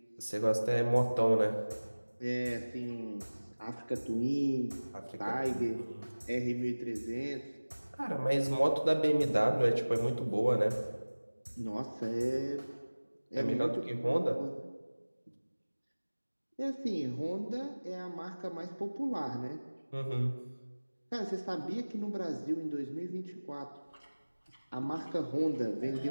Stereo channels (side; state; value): both; inverted; correlation -1.00